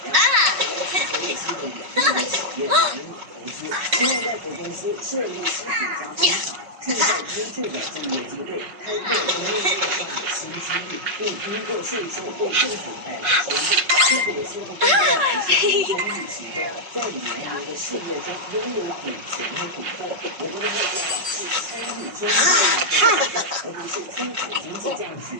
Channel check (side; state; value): left; late; 5.5 ms